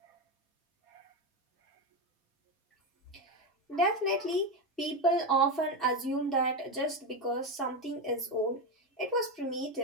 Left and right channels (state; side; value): normal; both; correlation 0.13